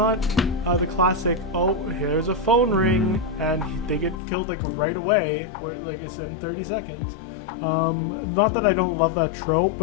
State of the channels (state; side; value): drops out; right; at 4.2 s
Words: the classic, oh, here's a phone ring and they get killed like right away, where like it's in 30 seconds. Not that I don't love that trope,